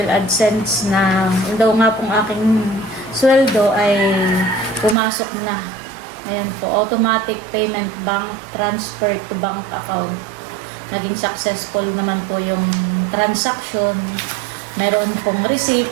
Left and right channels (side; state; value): left; drops out; at 5.0 s